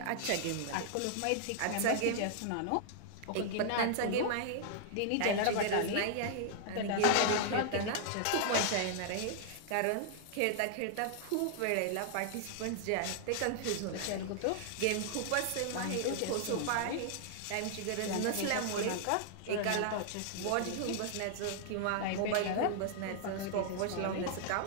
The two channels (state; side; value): different; both; correlation -0.01